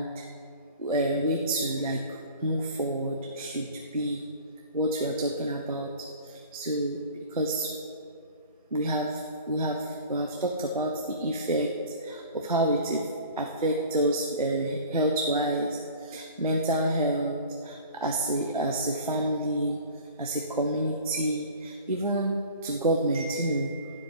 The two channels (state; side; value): inverted; both; correlation -0.42